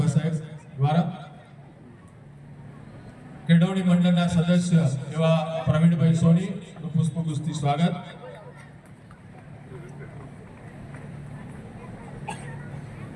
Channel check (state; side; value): identical; both; correlation 1.00